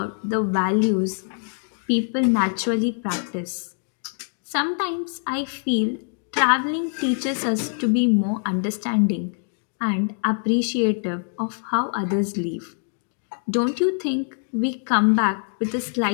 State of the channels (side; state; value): right; silent; 57 dB below the other